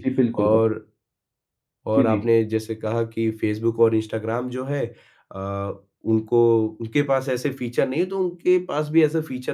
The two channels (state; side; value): identical; both; correlation 1.00